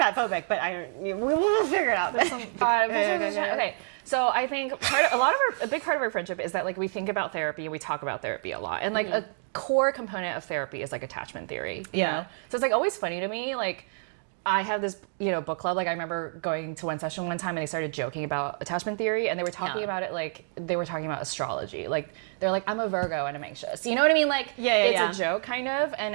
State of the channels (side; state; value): left; silent; digital silence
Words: but we'll figure it out. Okay, so I think a big part of our friendship is that like we think about therapy, we talk about therapy a lot, and like a core component of therapy is like attachment theory. You know? So it's like always funny to me, like I have this, book club. Like I remember going to one session one time and they started joking about attachment theory and they were talking about it like they were talking about astrology. Like they're like, I'm a Virgo and I'm anxious. You know what I mean? Like it's a joke kind of,